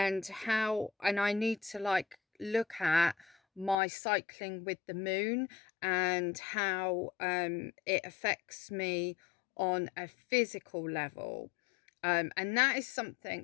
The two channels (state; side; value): drops out; right; at 3.8 s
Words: I need to like look at my cycling with the moon and how it affects me on a physical level. And that is